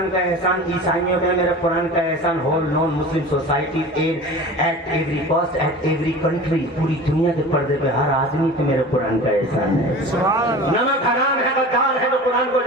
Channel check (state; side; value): normal; both; correlation 0.37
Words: کا احسان عیسائیوں پہ ہے، میرے قرآن کا احسان whole non Muslim society at every caste at every country, پوری دنیا کے پردے پہ ہر آدمی پہ میرے قرآن کا احسان ہے۔ نمک حرام ہے، غدار ہے تو قرآن کو